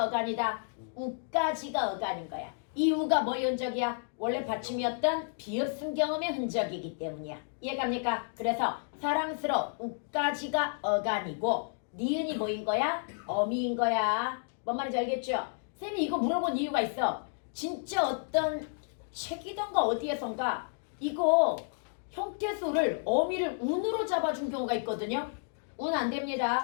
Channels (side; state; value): right; silent; digital silence